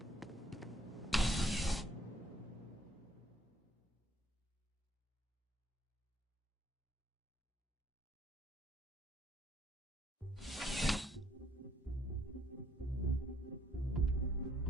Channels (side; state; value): both; normal; correlation 0.66